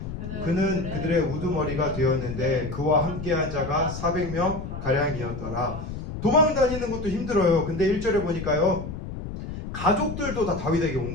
그는 그들의 우두머리가 되었는데 그와 함께한 자가 400명 가량이었더라. 도망 다니는 것도 힘들어요. 근데 1절에 보니까요. 가족들도 다 다윗에게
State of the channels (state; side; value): noise; left; rumble, 8 dB below the sound